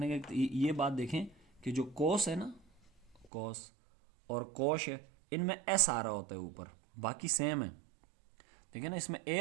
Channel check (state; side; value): drops out; left; at 3.2 s